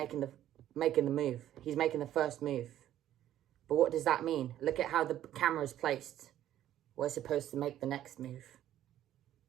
the move. He's making the first move. But what does that mean? Look at how the camera is placed. We're supposed to make the next move.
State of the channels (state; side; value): quieter; left; 12.1 dB